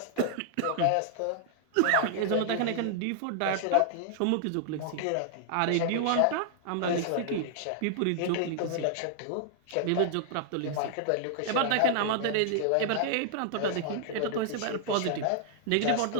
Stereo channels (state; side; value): different; both; correlation -0.01